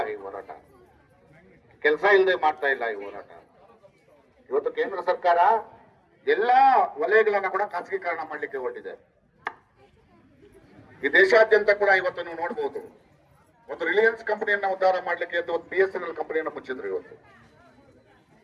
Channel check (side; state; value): both; identical; correlation 1.00